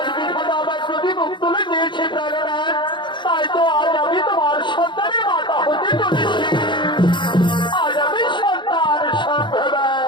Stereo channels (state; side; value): late; right; 0.23 ms